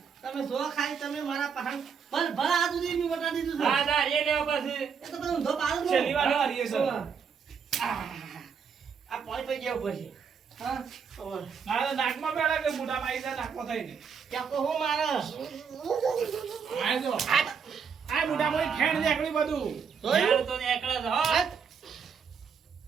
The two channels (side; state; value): left; quieter; 6.5 dB